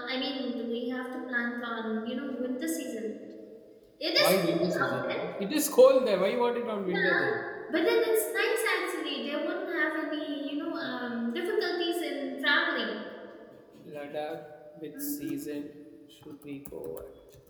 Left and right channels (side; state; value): both; identical; correlation 1.00